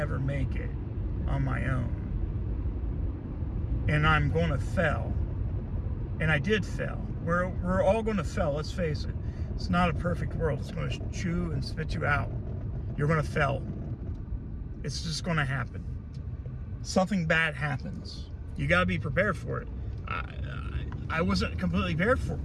make it on my own. And I'm going to fail. And I did fail. We're all going to fail, let's face it. It's not a perfect world. It's going to chew and spit you out. You're going to fail. It's just going to happen. Something bad happens. You got to be prepared for it. I wasn't completely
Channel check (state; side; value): identical; both; correlation 1.00